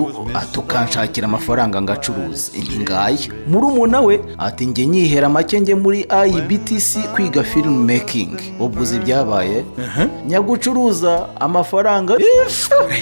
atukanshakira amafaranga ngacuruza intingaye murumuna we ati nge nyihera make nge muri IBTC kwiga film making. Ubwo uzi byabaye nyagucuruza amafaranga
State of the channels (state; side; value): inverted; both; correlation -1.00